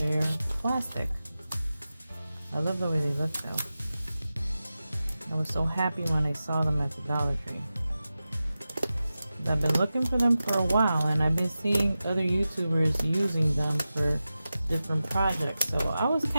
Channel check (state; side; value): inverted; both; correlation -0.94